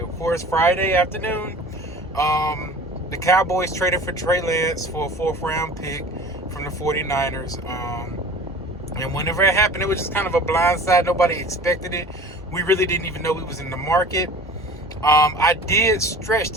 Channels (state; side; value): normal; both; correlation 0.42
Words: of course, Friday afternoon. The Cowboys traded for Trey Lance for a 4th-round pick from the 49ers. And whenever it happened, it was just kind of a blindside. Nobody expected it. We really didn't even know he was in the market. I did stretch